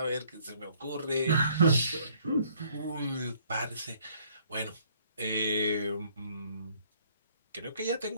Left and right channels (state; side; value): inverted; both; correlation -0.62